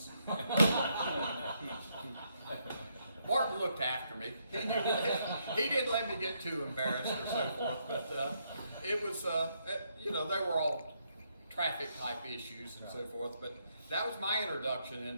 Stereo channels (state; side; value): inverted; both; correlation -0.76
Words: Martin looked after me. He didn't let me get too embarrassed or so forth, but it was, they were all traffic type issues and so forth, but that was my introduction